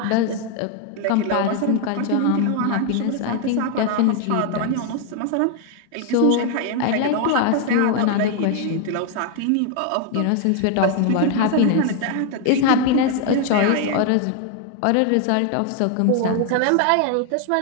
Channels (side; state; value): both; different; correlation 0.00